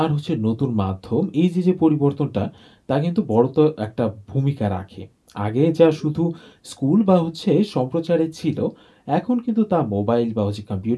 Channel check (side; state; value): both; identical; correlation 1.00